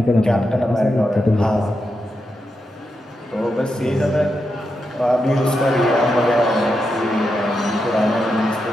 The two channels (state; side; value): normal; both; correlation 0.86